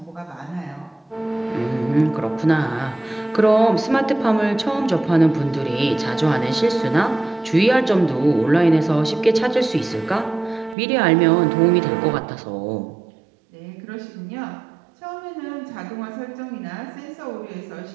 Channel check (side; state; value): left; drops out; at 10.8 s